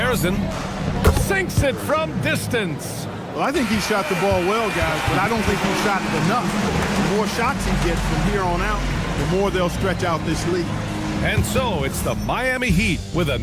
Sinks it from distance. Well, I think he shot the ball well, guys, but I don't think he shot it enough. The more shots he gets from here on out, the more they'll stretch out this lead. And so it's the Miami Heat with a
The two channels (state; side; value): identical; both; correlation 1.00